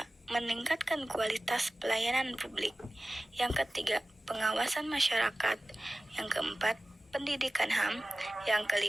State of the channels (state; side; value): normal; both; correlation 0.96